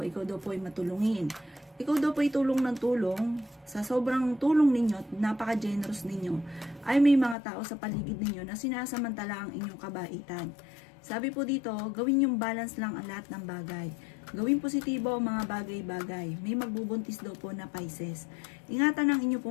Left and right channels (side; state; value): right; drops out; at 7.4 s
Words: ikaw daw po ay matulungin. Ikaw daw po ay tulong ng tulong. Sa sobrang tulong ninyo, napaka-generous ninyo, ay may mga tao sa paligid ninyo na sinasamantala ang inyong kabaitan. Sabi po dito, gawin yung balance lang ang lahat ng bagay. Gawin positibo ang mga bagay-bagay. May magbubuntis daw po na Pisces. Ingatan ang inyong